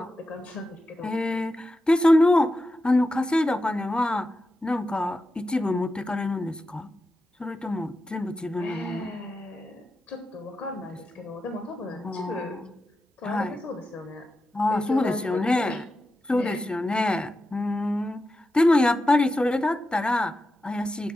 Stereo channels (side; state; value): both; normal; correlation 0.90